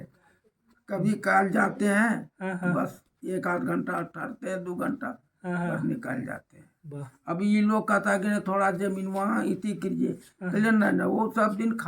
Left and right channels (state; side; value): identical; both; correlation 1.00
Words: कभी काल जाते हैं, हाँ हाँ बस 1 आध घंटा ठहरते हैं, 2 घंटा, हाँ हाँ। बस निकल जाते हैं। वाह। अभी ये लोग कहता है कि थोड़ा जमीन वहाँ इति कीजिए, कहले नहीं, वो सब दिन